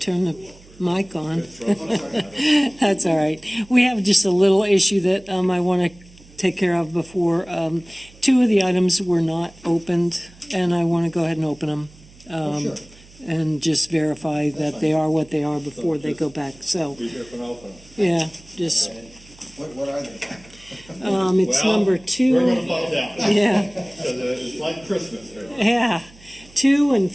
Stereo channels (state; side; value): noise; right; hum, 24 dB below the sound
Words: turn the mic on. That's all right. We have just a little issue that I want to take care of before. Two of the items were not opened, and I want to go ahead and open them. Sure. And just verify that they are what they are before they go back. So, Be here for an open. yeah, just, What are they? it's Well, number 2. We're gonna find out. Yeah, Because it's like Christmas here. yeah. 2 and